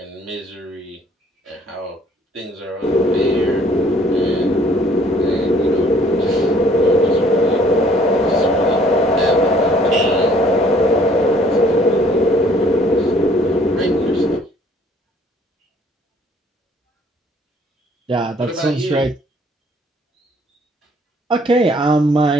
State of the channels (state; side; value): normal; both; correlation 0.59